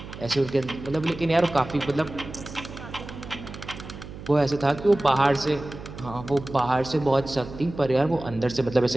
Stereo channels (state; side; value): noise; right; hum, 13 dB below the sound